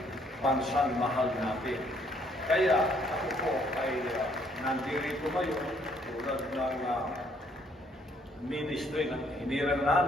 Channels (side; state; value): both; normal; correlation 0.66